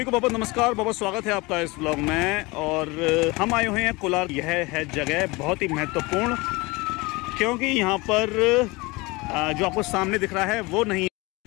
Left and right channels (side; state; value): right; quieter; 24.1 dB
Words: को बहुत नमस्कार, बहुत स्वागत है आपका इस ब्लॉग में। और हम आए हुए हैं कोलार। यह है जगह बहुत ही महत्वपूर्ण, क्योंकि यहाँ पर जो आपको सामने दिख रहा है वो नहीं,